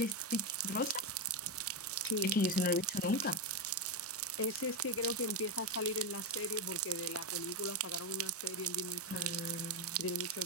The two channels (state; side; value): normal; both; correlation 0.10